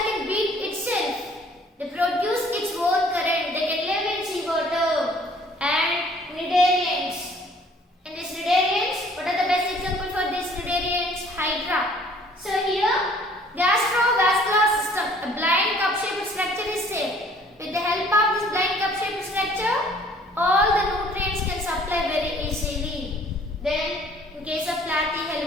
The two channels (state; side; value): normal; both; correlation 0.56